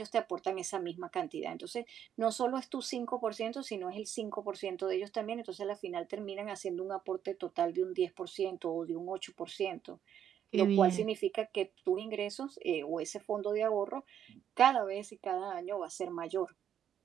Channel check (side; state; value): left; quieter; 9.4 dB